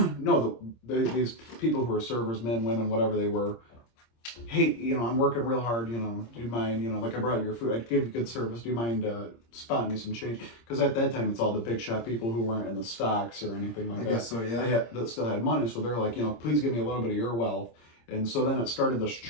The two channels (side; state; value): right; late; 26 ms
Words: No, these people who were servers, men, women, whatever they were. Hey, I'm working real hard. Do you mind? Like I brought you your food. I gave you good service. Do you mind spotting me some change? Because at that time, it's all the big shot people who weren't in the stocks or anything like I that. guess so, yeah. That still had money, so they're like, please give me a little bit of your wealth. And so then it started this